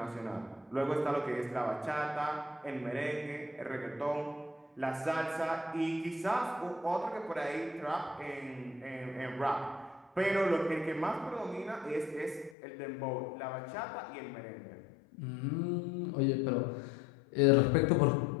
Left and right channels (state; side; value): drops out; right; at 12.6 s